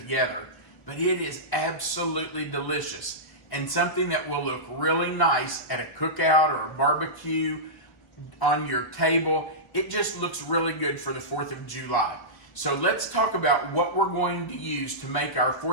but it is absolutely delicious and something that will look really nice at a cookout or a barbecue on your table. It just looks really good for the 4th of July. So let's talk about what we're going to use to make our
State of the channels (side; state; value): right; late; 1.3 ms